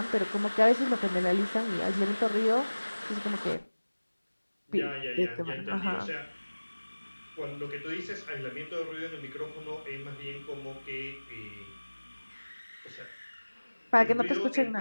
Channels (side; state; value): both; inverted; correlation -1.00